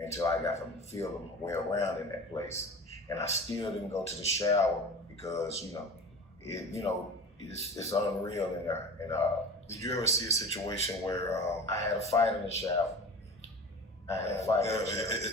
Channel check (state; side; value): normal; both; correlation 0.35